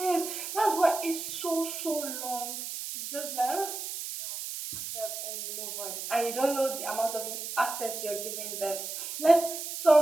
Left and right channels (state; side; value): noise; right; hiss, 6 dB below the sound